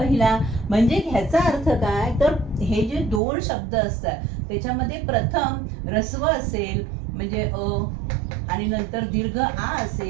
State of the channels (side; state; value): left; drops out; at 3.2 s